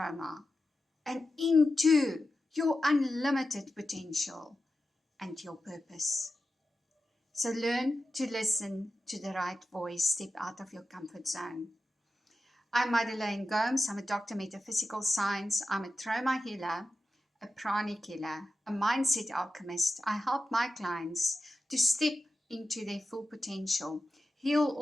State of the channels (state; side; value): normal; both; correlation 0.92